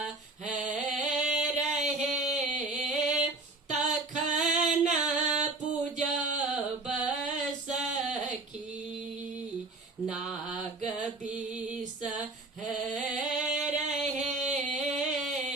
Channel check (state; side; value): quieter; left; 3.2 dB